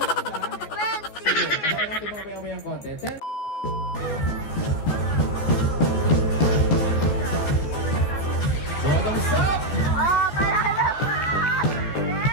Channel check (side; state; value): right; late; 14 ms